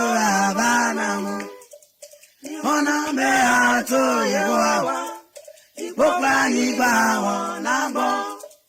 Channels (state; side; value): identical; both; correlation 1.00